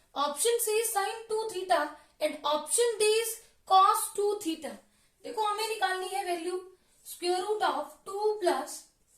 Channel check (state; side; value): identical; both; correlation 1.00